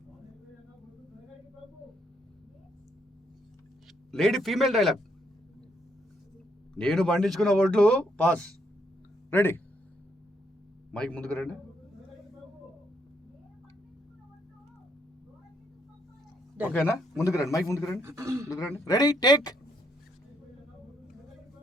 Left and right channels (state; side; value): normal; both; correlation 0.73